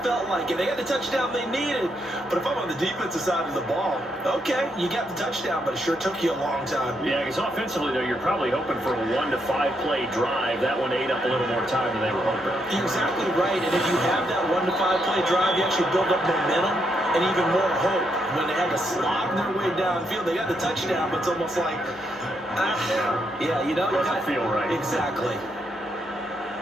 felt like it. They got the touchdown they needed. But if I'm on the defensive side of the ball, okay, you got the touchdown, but it sure took you a long time. Yeah, because offensively, though, you're probably hoping for a 1 to 5 play drive. That one ate up a little more time than they were hoping. You're exactly right. And if you have that 1 to 5 play drive, you actually build up momentum and even more hope. When they had to slog their way downfield, they got the touchdown, but it's almost like, yeah, you know. Doesn't feel right. Exactly.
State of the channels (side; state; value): both; normal; correlation 0.78